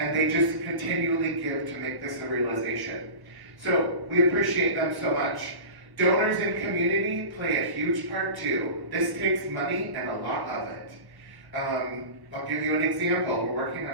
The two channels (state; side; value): late; left; 1.1 ms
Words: they just continually give to make this a realization. So we appreciate them so much. Donors in community play a huge part too. This takes money and a lot of it. I'll give you an example. We're working